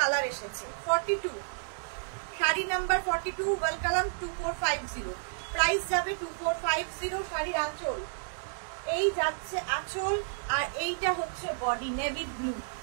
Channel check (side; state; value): left; silent; digital silence